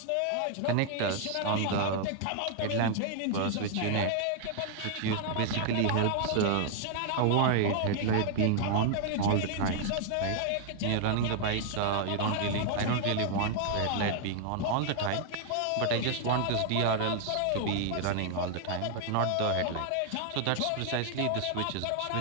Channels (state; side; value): different; both; correlation 0.00